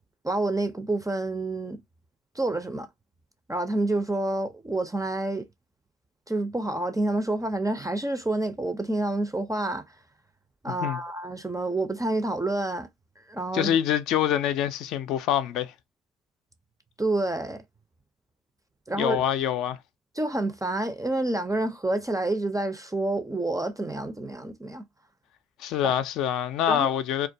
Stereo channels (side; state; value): both; normal; correlation 0.63